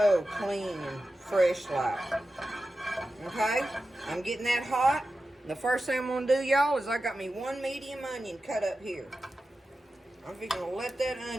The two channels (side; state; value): both; normal; correlation 0.92